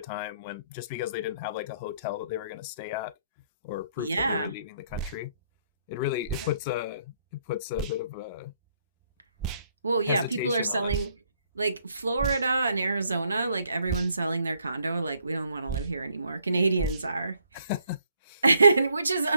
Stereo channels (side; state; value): both; inverted; correlation -0.69